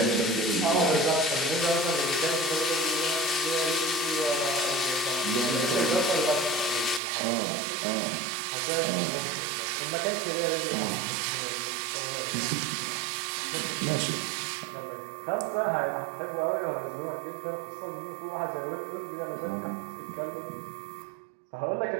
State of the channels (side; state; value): left; drops out; at 7.0 s